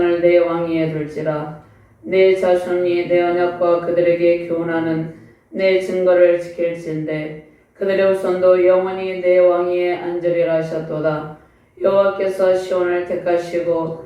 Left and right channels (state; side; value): identical; both; correlation 1.00